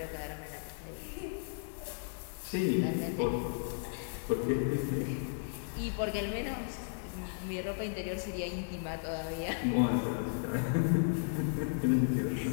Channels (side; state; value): right; silent; 55 dB below the other